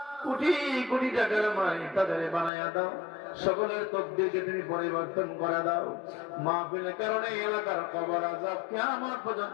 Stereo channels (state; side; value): drops out; right; at 2.5 s